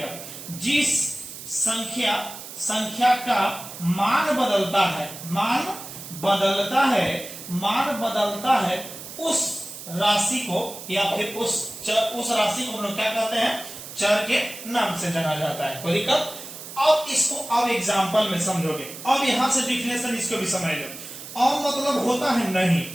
जिस संख्या का मान बदलता है, मान बदलता है उस राशि को, या फिर उस राशि को हम लोग क्या कहते हैं? चर के नाम से जाना जाता है। कोई दिक्कत? अब इसको अब एग्जाम्पल में समझोगे। अब यहां से डिफिनेशन इसको भी समझ लो। अब मतलब होता है नहीं,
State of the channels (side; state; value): right; noise; hiss, 12 dB below the sound